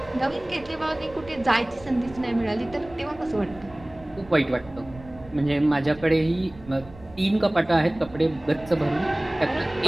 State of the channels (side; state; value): right; noise; rumble, 20 dB below the sound